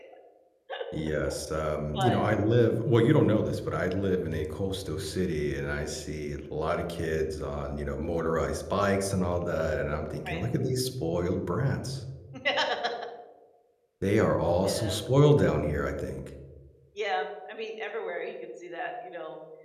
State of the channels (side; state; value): both; identical; correlation 1.00